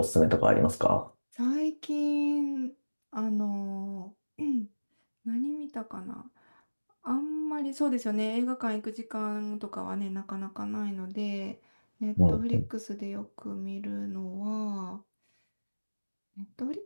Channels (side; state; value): both; inverted; correlation -1.00